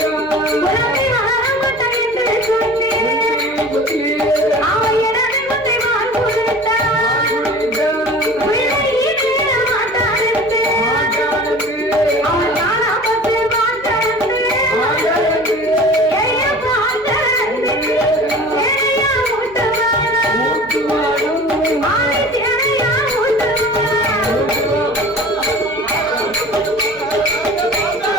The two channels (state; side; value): noise; right; hum, 23 dB below the sound